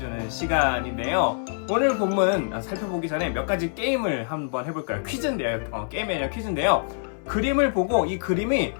시간인데요. 오늘 본문 살펴보기 전에 몇 가지 게임을 한번 해볼까요? 퀴즈인데요. 게임이 아니라 퀴즈인데요. 그림을 보고 이 그림이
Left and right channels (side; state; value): right; silent; digital silence